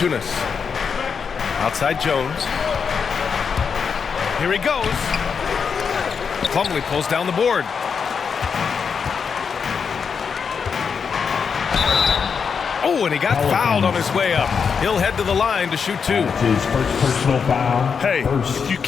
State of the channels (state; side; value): quieter; right; 6.2 dB